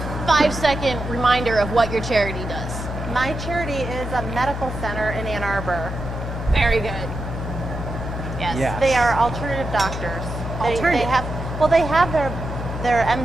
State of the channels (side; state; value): both; normal; correlation 0.87